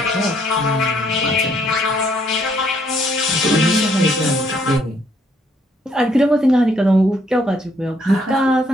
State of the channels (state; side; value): normal; both; correlation 0.69